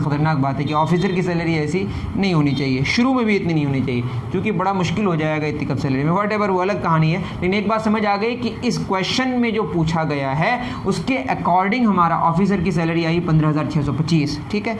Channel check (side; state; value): both; identical; correlation 1.00